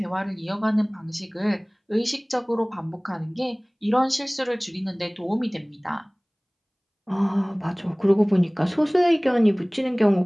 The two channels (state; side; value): identical; both; correlation 1.00